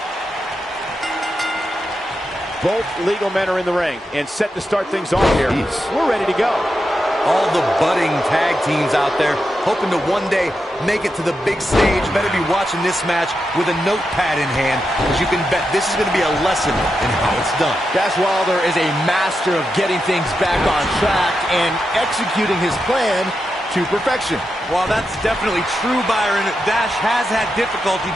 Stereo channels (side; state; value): both; normal; correlation 0.87